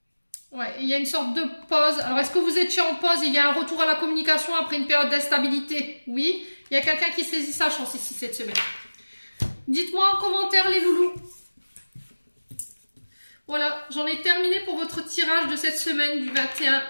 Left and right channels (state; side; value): inverted; both; correlation -1.00